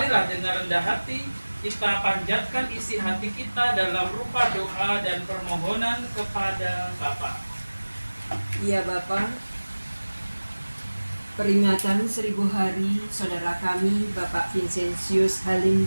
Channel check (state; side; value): inverted; both; correlation -1.00